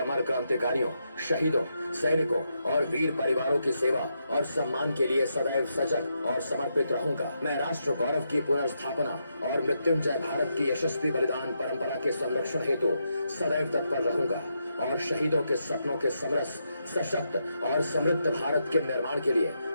क्रांतिकारियों, शहीदों, सैनिकों और वीर परिवारों की सेवा और सम्मान के लिए सदैव सजग और समर्पित रहूंगा। मैं राष्ट्र गौरव की पुनर्स्थापना और मृत्युंजय भारत की यशस्वी बलिदान परंपरा के संरक्षण हेतु सदैव तत्पर रहूंगा और शहीदों के सपनों के समरस, सशक्त और समृद्ध भारत के निर्माण के लिए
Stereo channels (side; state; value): both; inverted; correlation -0.82